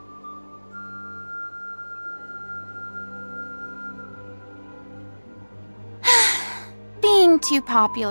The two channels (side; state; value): both; inverted; correlation -1.00